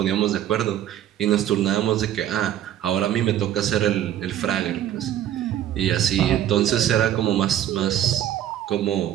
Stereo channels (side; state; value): left; quieter; 11.5 dB